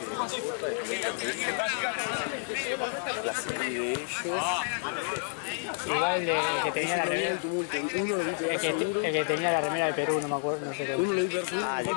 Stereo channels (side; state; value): right; silent; 58 dB below the other